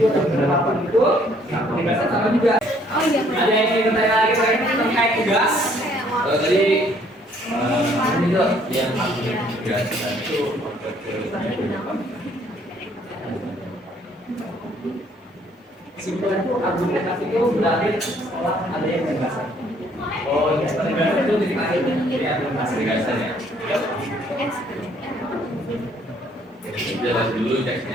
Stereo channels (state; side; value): normal; both; correlation 0.63